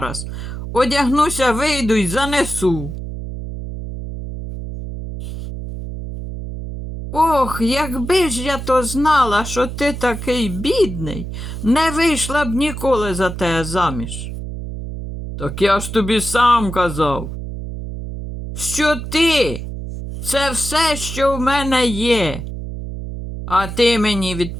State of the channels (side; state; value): right; noise; hum, 7 dB below the sound